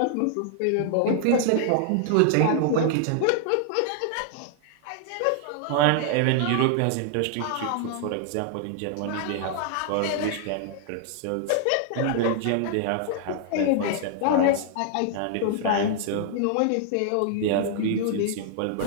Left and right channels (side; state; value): both; different; correlation 0.00